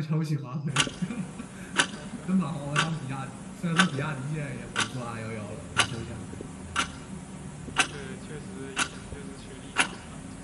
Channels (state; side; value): identical; both; correlation 1.00